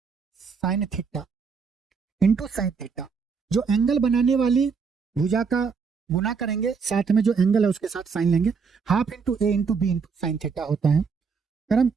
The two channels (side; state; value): left; quieter; 5.5 dB